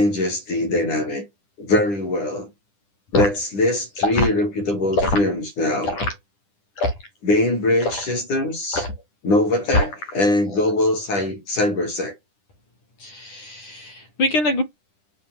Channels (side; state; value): right; late; 10 ms